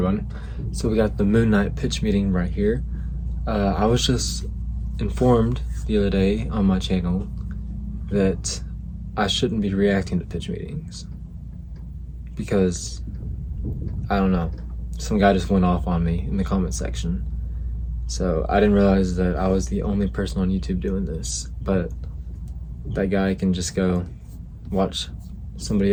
So we got the Moon Knight pitch meeting right here. I was just informed the other day on my channel that I shouldn't be reacting to pitch meetings because, I don't know, some guy just went off on me in the comment section. So I didn't realize that I was the only person on YouTube doing this, but that guy can just go watch somebody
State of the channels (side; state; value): both; identical; correlation 1.00